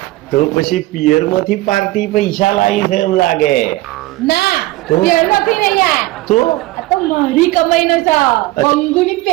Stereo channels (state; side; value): quieter; left; 18.5 dB